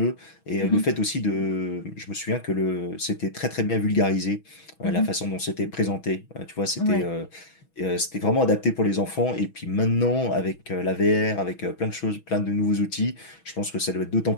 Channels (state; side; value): late; right; 6.2 ms